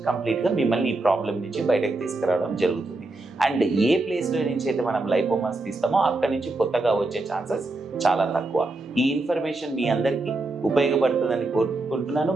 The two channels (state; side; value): quieter; left; 3.0 dB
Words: కంప్లీట్గా మిమ్మల్ని ఈ ప్రాబ్లం నుంచి బయటకు తీసుకురావడం జరుగుతుంది. అండ్ ఏ ప్లేస్లో నుంచి అయితే మనం లైపోమాస్ తీస్తామో అక్కడి నుంచి కొత్తగా వచ్చే ఛాన్సెస్ చాలా తక్కువ. ఈ ఇన్ఫర్మేషన్ మీ అందరికీ ఉపయోగపడుతుందని కోరుకుంటున్నాను,